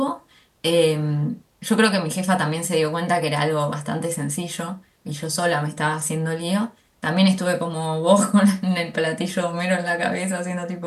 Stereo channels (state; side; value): identical; both; correlation 1.00